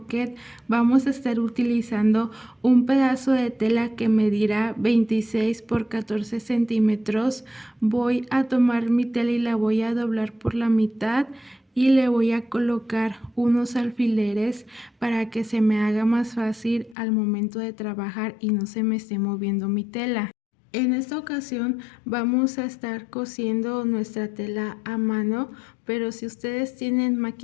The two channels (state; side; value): drops out; right; at 16.9 s